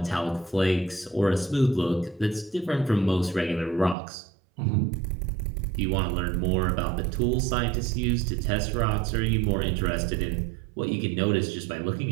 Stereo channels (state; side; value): drops out; left; at 4.0 s